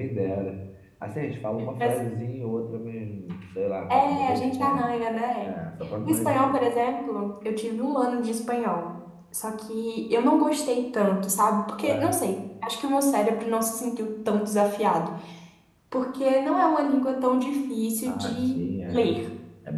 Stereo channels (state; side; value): identical; both; correlation 1.00